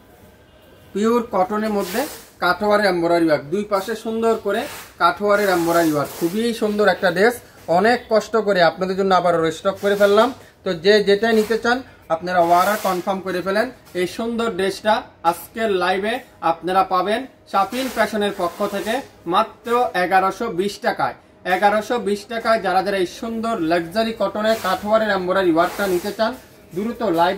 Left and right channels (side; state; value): both; identical; correlation 1.00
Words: পিওর কটনের মধ্যে কাঠওয়ারের এমব্রয়ডারি ওয়ার্ক, দুই পাশে সুন্দর করে কাঠওয়ারের এমব্রয়ডারি ওয়ার্ক, খুবই সুন্দর একটা ড্রেস। অনেক কষ্ট করে আপনাদের জন্য আবার রিস্টক করে ফেললাম। তো যে যেটাই নিতে চান আপনারা অর্ডার কনফার্ম করে ফেলেন। এই সুন্দর ড্রেসটা আজকের লাইভে আপনারা পাবেন শাফিন ফ্যাশনের পক্ষ থেকে মাত্র 1120 টাকায়। 1120 টাকায় যারা যারা এই সুন্দর লাক্সারি কটনের কাঠওয়ারের এমব্রয়ডারি ওয়ার্কটা নিতে চান, দ্রুত লাইভ